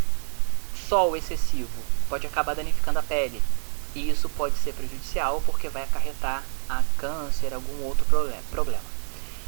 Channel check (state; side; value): silent; left; 61 dB below the other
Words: sol excessivo pode acabar danificando a pele, e isso pode ser prejudicial porque vai acarretar a câncer, algum outro problema.